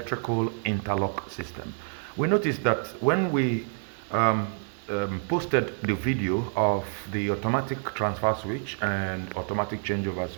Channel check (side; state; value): left; silent; 59 dB below the other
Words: interlock system. We noticed that when we posted the video of the automatic transfer switch and automatic changeover